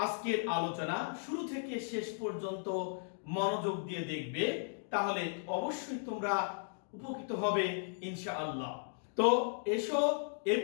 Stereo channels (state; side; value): silent; right; digital silence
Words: আজকের আলোচনা শুরু থেকে শেষ পর্যন্ত মনোযোগ দিয়ে দেখবে, তাহলে অবশ্যই তোমরা উপকৃত হবে ইনশাআল্লাহ। তো এসো এই